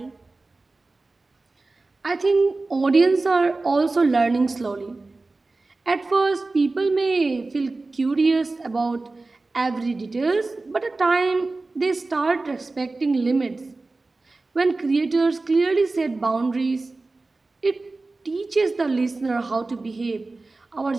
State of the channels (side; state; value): left; quieter; 3.4 dB